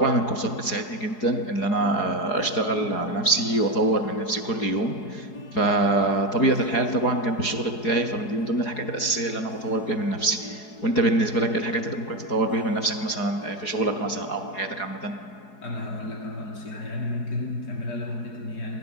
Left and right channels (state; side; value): late; right; 4.8 ms